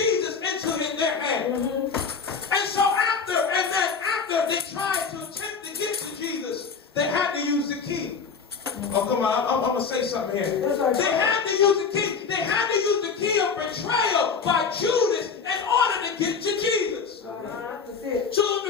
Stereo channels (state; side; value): quieter; right; 5.7 dB